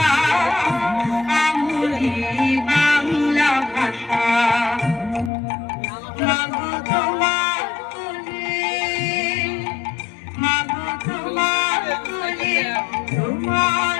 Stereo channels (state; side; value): drops out; right; at 5.3 s